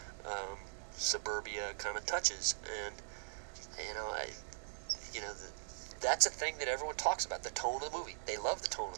suburbia kind of touches. And that's a thing that everyone talks about, the tone of the movie. They love the tone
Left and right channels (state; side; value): silent; left; digital silence